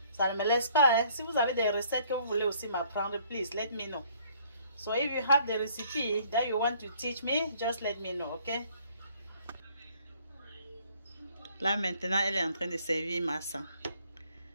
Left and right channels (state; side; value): inverted; both; correlation -0.62